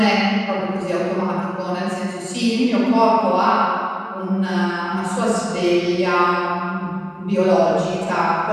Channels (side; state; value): both; identical; correlation 1.00